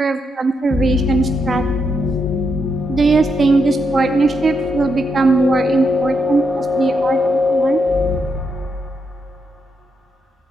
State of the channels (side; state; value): both; normal; correlation 0.81